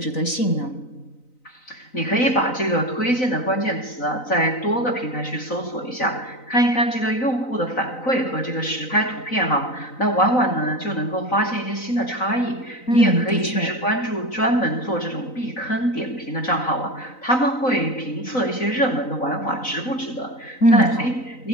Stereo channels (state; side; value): late; right; 3.9 ms